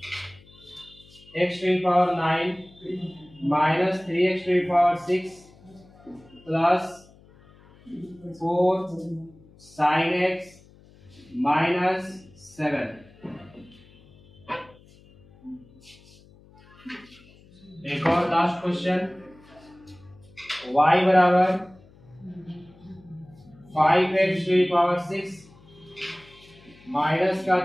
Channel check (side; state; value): left; noise; hum, 26 dB below the sound